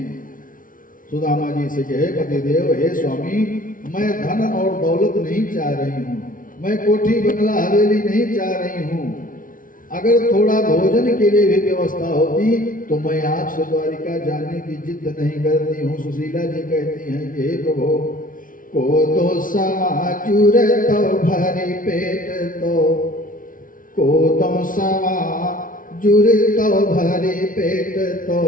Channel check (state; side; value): late; right; 0.39 ms